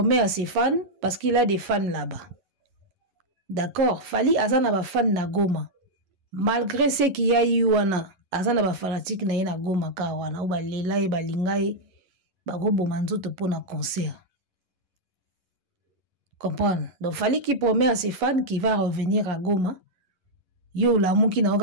à ses fans parce qu'il a des fans là-bas. D'accord, Fally azana ba fan na Goma. Malgré ce qu'il y a eu wana, azana ba fanatique na ye na Goma ka wana, ou ba lela e ba lingai ba go bomanzoto pour na concert. Comprendre? Donc Fally qui promet à ses fans qu'il va revenir à Goma. Yo la muki na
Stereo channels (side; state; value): left; late; 11 ms